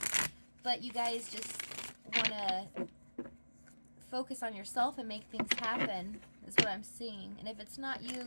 But you guys just want to focus on yourself and make things happen, is what I'm seeing. And if it's not you,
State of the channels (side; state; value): both; inverted; correlation -1.00